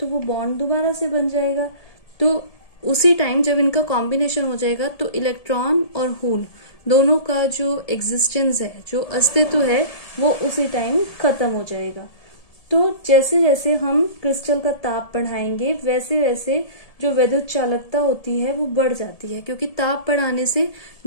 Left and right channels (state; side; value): late; right; 1.7 ms